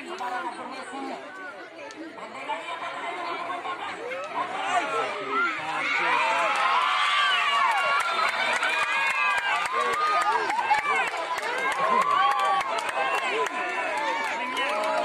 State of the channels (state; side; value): identical; both; correlation 1.00